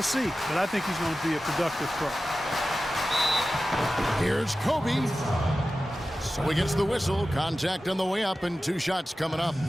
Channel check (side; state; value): both; normal; correlation 0.94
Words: see, but I think he's going to be a productive pro. Here's Kobe. So he gets the whistle. Contact on the way up and 2 shots coming up.